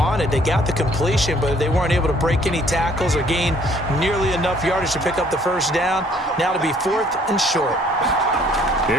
They got the completion, but they weren't able to break any tackles or gain nearly enough yardage to pick up the first down. Now to be 4th and short.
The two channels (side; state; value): both; normal; correlation 0.60